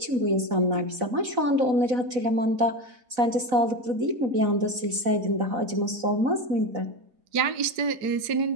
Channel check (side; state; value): left; late; 4.0 ms